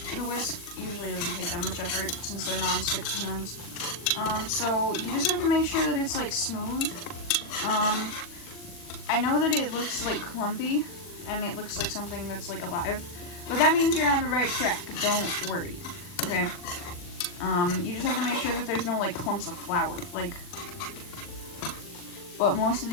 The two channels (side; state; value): right; late; 40 ms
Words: the whisk usually doesn't take that much effort since they're non-stick pans. So you just have to make sure that it's like smooth. I know that it looks like clumpy and it looks like something that's like alive, but that means you're on the right track. Don't worry, okay? You just have to make sure that there's no like clumps of flour, like, but most of